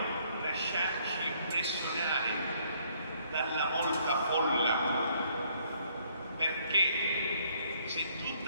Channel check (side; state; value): both; inverted; correlation -0.65